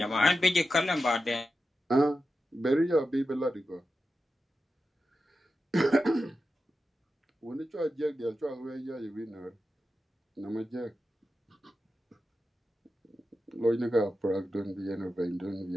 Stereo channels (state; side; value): normal; both; correlation 0.91